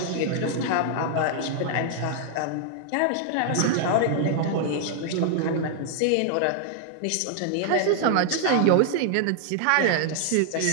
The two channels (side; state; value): both; different; correlation -0.01